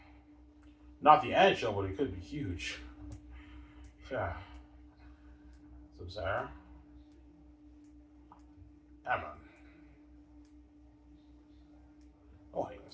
Not the NHL, but it could be huge. Yeah. So, Sarah? Yeah, man. Oh, hey,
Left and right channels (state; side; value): identical; both; correlation 1.00